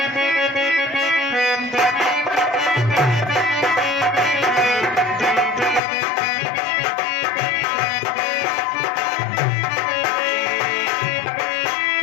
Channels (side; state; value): right; drops out; at 5.8 s